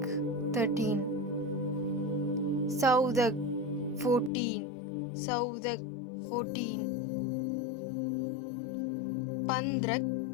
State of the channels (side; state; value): right; drops out; at 4.3 s